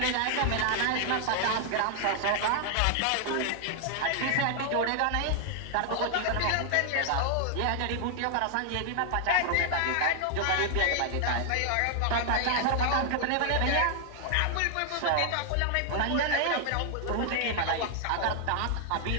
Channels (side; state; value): both; different; correlation 0.00